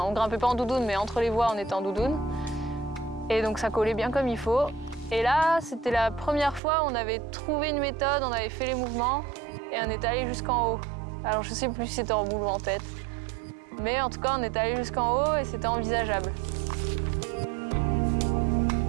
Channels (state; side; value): drops out; left; at 6.6 s